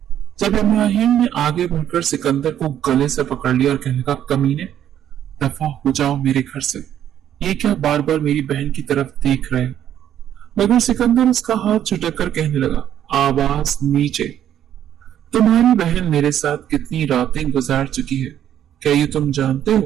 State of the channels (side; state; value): left; quieter; 10.5 dB